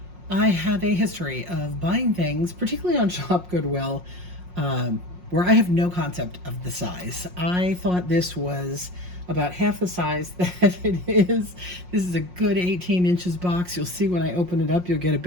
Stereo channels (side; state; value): left; late; 5.6 ms